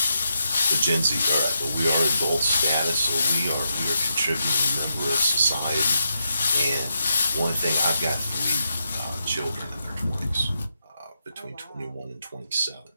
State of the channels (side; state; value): both; inverted; correlation -0.83